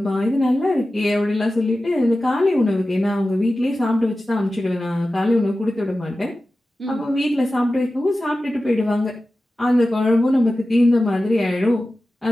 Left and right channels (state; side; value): normal; both; correlation 0.94